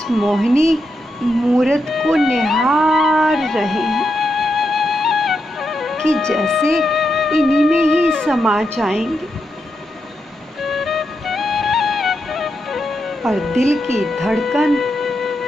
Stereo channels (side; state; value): both; normal; correlation 0.84